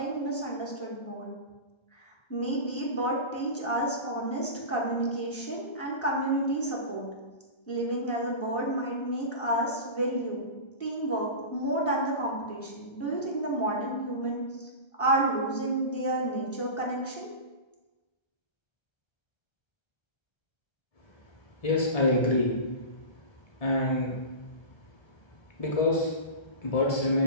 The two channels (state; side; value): late; right; 1.3 ms